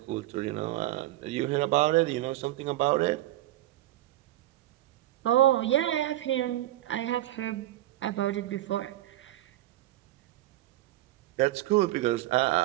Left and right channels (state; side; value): quieter; left; 15.3 dB